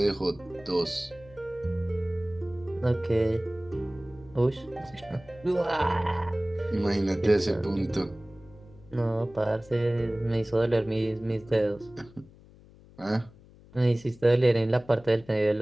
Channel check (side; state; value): left; noise; hum, 24 dB below the sound